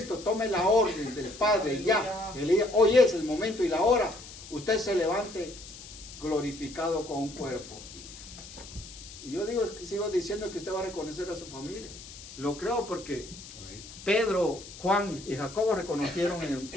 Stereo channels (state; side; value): noise; left; hiss, 15 dB below the sound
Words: tome la orden del Padre, ya, hoy es el momento y la hora, usted se levante glorificado con un cuerpo. Y yo sigo diciendo que usted va a reconocer a su familia. Lo creo porque Pedro, Juan y Jacobo reconocieron